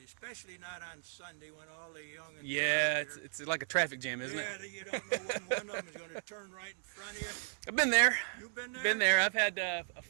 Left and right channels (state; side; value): silent; left; digital silence